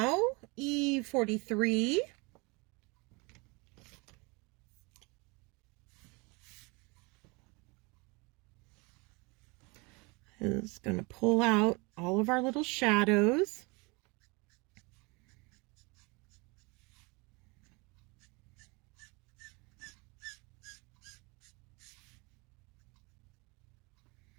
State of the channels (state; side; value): quieter; left; 27.5 dB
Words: E43. Is going to pull out all of our little shadows.